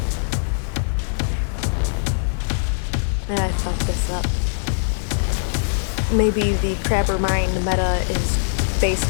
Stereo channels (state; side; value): silent; right; 60 dB below the other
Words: And I fucked this up. Maybe the Crabber Mine meta is